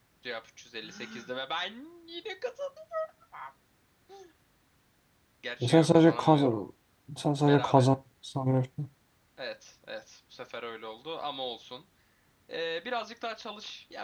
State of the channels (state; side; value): identical; both; correlation 1.00